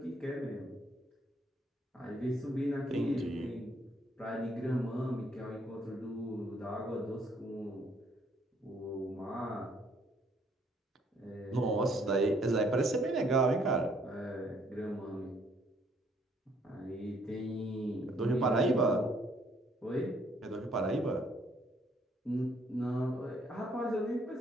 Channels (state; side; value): normal; both; correlation 0.66